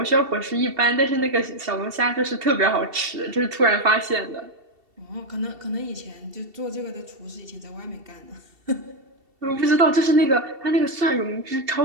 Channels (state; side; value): late; left; 2.7 ms